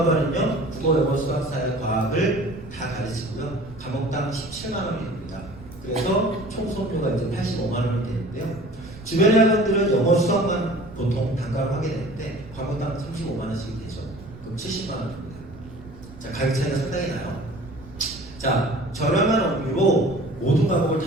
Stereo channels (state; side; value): noise; right; rumble, 17 dB below the sound